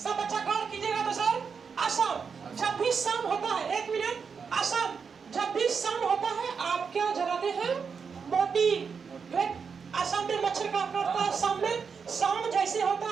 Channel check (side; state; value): left; quieter; 5.9 dB